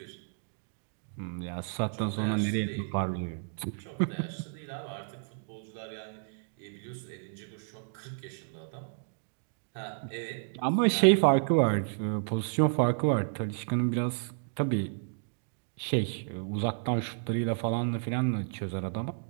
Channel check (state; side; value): silent; left; digital silence